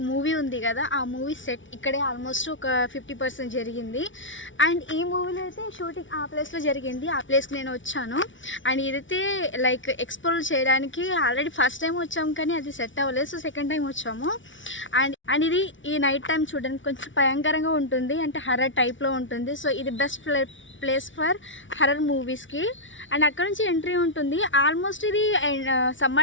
మూవీ ఉంది కదా, ఆ మూవీ సెట్ ఇక్కడే ఆల్మోస్ట్ ఒక 50% జరిగింది. అండ్ ఈ మూవీలో అయితే షూటింగ్ ఆ ప్లేస్లో జరిగింది. ఆ ప్లేస్కి నేను వచ్చాను. అండ్ ఇదైతే లైక్ ఎక్స్ప్లోర్ చేయడానికి ఆల్రెడీ ఫస్ట్ టైం వచ్చాము, కానీ అది సెట్ అవ్వలేదు. సో సెకండ్ టైం వచ్చాము. అండ్ ఇది ఈ నైట్ టైం చూడడానికి కొంచెం భయంకరంగా ఉంటుంది, అంటే హర్రర్ టైప్లో ఉంటుంది. సో ఇది బెస్ట్ ప్లేస్ ఫర్ హర్రర్ మూవీస్కి. అండ్ అక్కడ నుంచి ఎంట్రీ ఉంటుంది. ఆల్మోస్ట్ ఇది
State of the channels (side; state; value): right; late; 0.56 ms